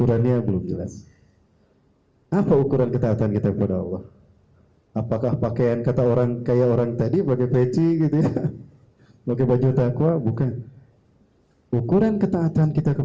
belum jelas. Apa ukuran ketaatan kita kepada Allah? Apakah pakaian kata orang kayak orang tadi pakai peci gitu ya, pakai baju takwa? Bukan. Ukuran ketaatan kita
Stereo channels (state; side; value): identical; both; correlation 1.00